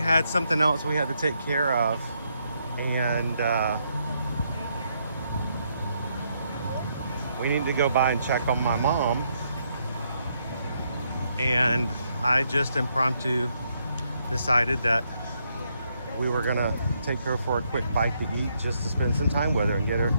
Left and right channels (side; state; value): both; inverted; correlation -0.76